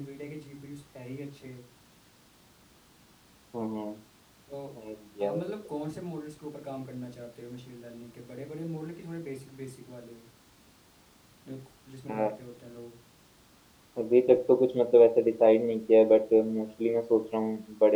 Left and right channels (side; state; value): both; identical; correlation 1.00